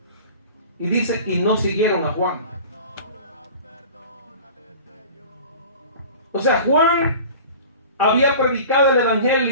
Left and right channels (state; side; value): inverted; both; correlation -0.40